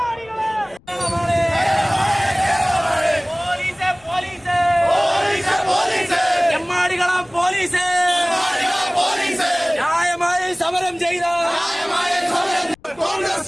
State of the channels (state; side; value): noise; left; rumble, 28 dB below the sound